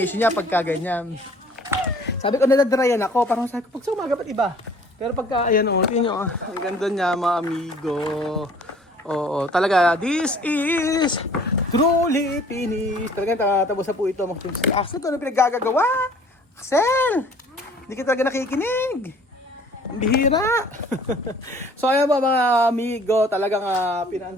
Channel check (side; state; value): both; normal; correlation 0.53